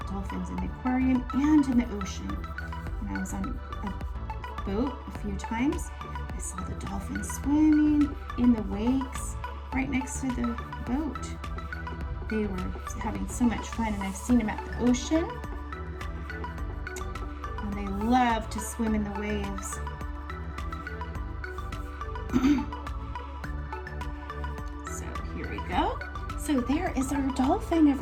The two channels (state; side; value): identical; both; correlation 1.00